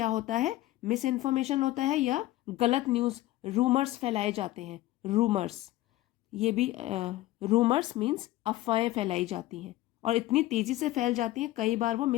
होता है? मिस इन्फॉर्मेशन होता है, या गलत न्यूज़, रूमर्स फैलाए जाते हैं। रूमर्स, ये भी रूमर्स मीन्स अफवाहें फैलाई जाती हैं, और इतनी तेज़ी से फैल जाती हैं, कई बार वो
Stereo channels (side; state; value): right; quieter; 16.5 dB